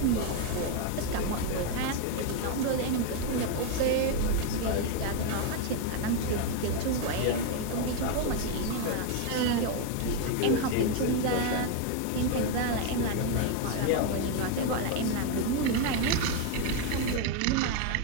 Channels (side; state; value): both; different; correlation 0.01